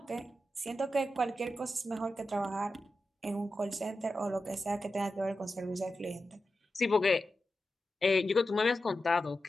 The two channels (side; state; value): both; normal; correlation 0.91